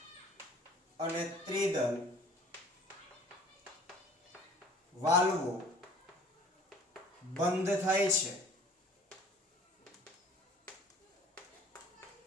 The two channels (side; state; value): both; normal; correlation 0.50